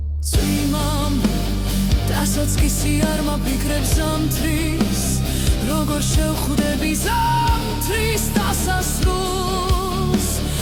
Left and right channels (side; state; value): both; identical; correlation 1.00